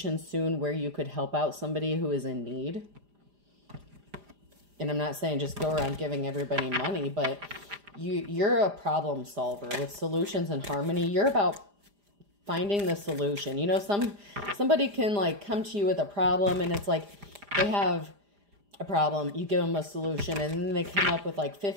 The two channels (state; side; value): late; left; 4.9 ms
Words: soon where you could help out somebody who is in need. And I'm not saying just go around giving everybody money, but you're a problem solver with solutions and harmony. You're about finding the solution. You know, somebody can like come to you with a problem, and it's like they have a problem, you give them a solution, and then they come up with like